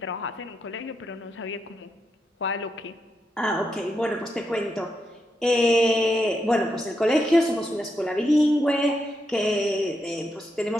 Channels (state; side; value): normal; both; correlation 0.83